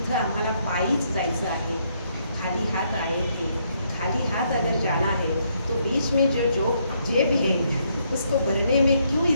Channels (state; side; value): inverted; both; correlation -0.73